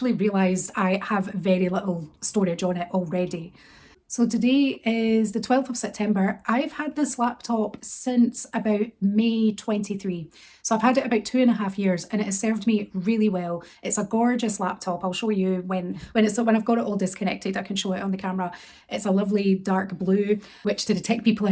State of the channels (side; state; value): both; identical; correlation 1.00